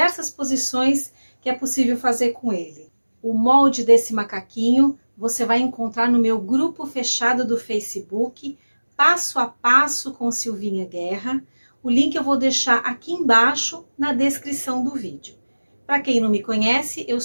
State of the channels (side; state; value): both; inverted; correlation -1.00